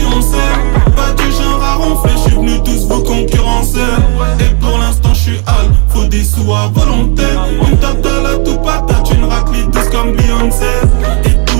pas du genre à ronfler. J'suis venu tous vous concurrencer. Et pour l'instant j'suis hal, faut des sous à volonté. On me tape de la tout patate, une raclée douce comme Beyoncé. Et tous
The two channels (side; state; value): left; quieter; 34.6 dB